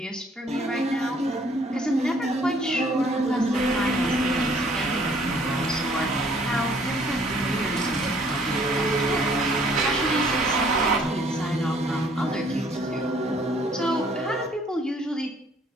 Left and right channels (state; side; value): normal; both; correlation 0.61